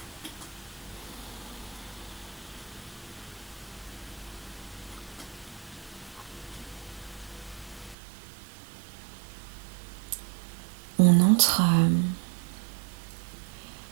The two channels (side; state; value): left; drops out; at 8.0 s